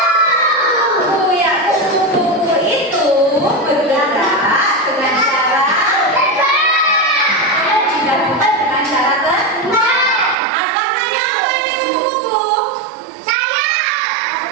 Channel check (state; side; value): drops out; left; at 10.4 s